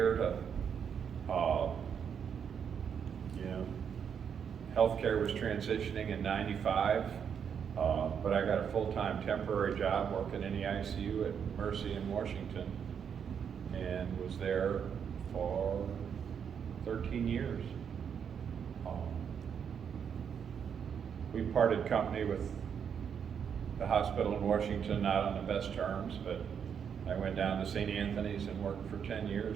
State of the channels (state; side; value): quieter; left; 7.5 dB